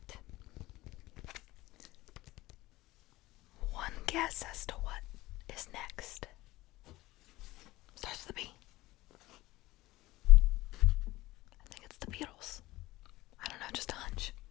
one guess as to what is next. Starts with a B. I think it's the Beatles. I don't know, just a hunch.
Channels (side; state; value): right; quieter; 18.4 dB